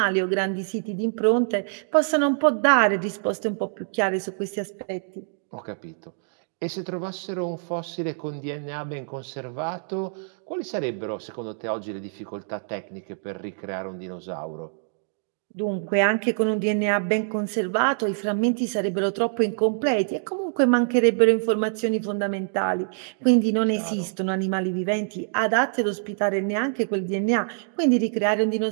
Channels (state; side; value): silent; left; digital silence